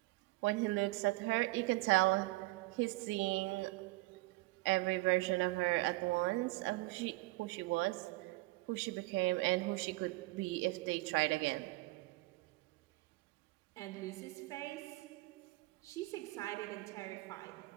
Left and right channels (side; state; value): left; quieter; 22.0 dB